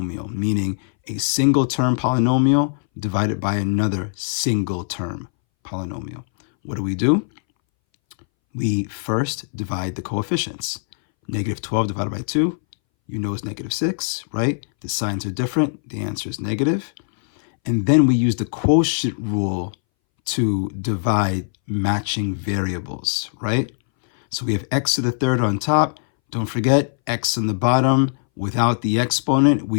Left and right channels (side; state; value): right; silent; 63 dB below the other